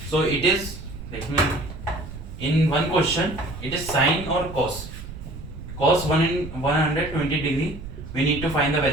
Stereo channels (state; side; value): noise; right; rumble, 12 dB below the sound